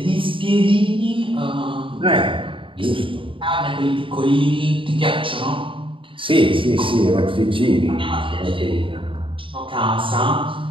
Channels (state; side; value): late; left; 0.25 ms